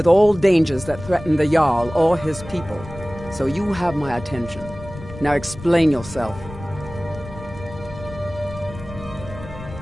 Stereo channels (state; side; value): noise; left; rumble, 14 dB below the sound